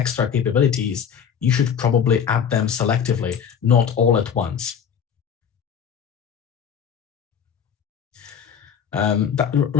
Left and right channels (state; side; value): quieter; right; 7.6 dB